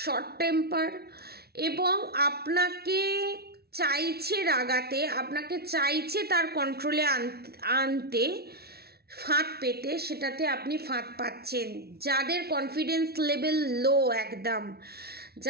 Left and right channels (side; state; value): left; late; 0.45 ms